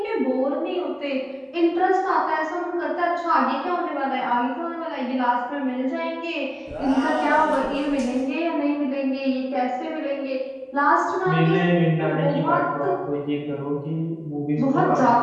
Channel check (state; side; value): identical; both; correlation 1.00